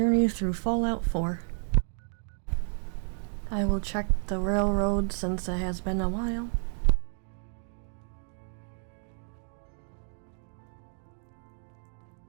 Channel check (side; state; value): left; silent; digital silence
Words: through Fallout 4. I will check the railroad since it has been a while.